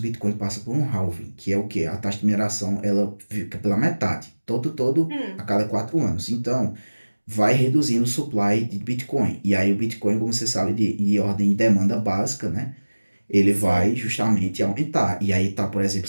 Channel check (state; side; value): inverted; both; correlation -1.00